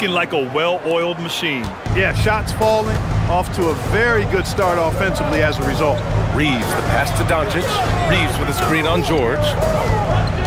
like a well-oiled machine. Yeah, shots falling off to a very good start offensively as a result. Reeves, the pass to Doncic. Reeves with a screen on George.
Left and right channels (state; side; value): identical; both; correlation 1.00